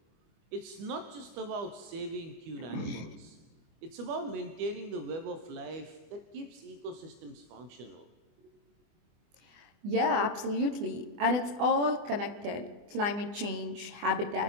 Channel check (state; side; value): late; left; 24 ms